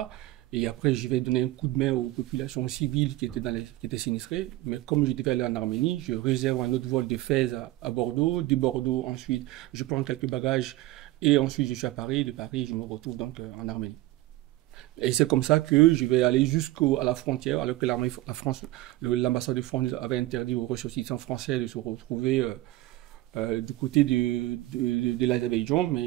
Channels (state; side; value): quieter; left; 17.1 dB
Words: Et après, je vais donner un coup de main aux populations civiles qui étaient sinistrées. Mais comme je devais aller en Arménie, je réserve un autre vol de Fès à Bordeaux. De Bordeaux, ensuite, je prends quelques bagages. Et ensuite, je suis à Paris. De Paris, je me retrouve donc en Arménie. Et c'est comme ça que je vais aller jusqu'à la frontière, alors que l'ambassade de France avait interdit aux ressortissants français de se retrouver du côté de l'Azerbaïdjan,